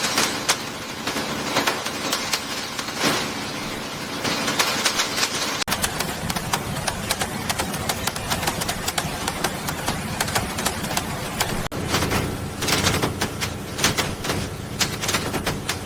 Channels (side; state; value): both; identical; correlation 1.00